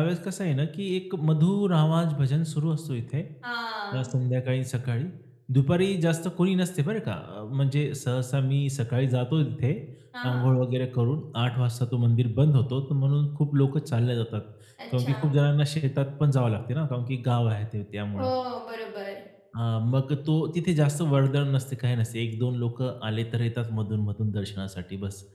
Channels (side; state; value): both; identical; correlation 1.00